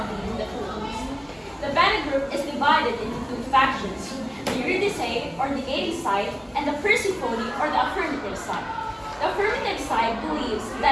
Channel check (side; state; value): both; identical; correlation 1.00